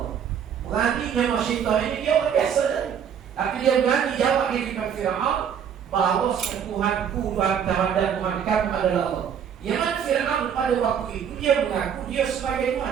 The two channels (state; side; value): quieter; left; 8.1 dB